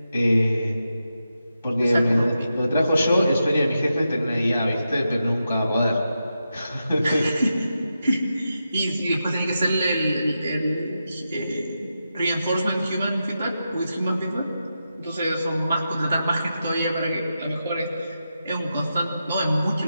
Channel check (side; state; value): both; inverted; correlation -0.88